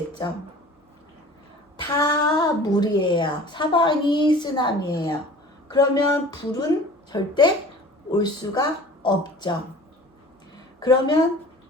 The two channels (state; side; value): normal; both; correlation 0.43